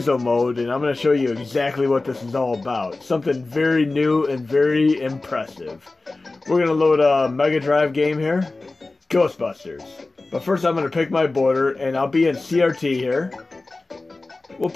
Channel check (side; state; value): right; quieter; 3.3 dB